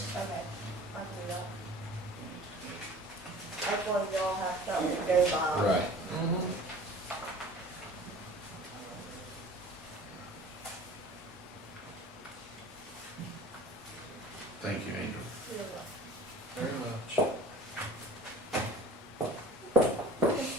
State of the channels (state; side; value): normal; both; correlation 0.43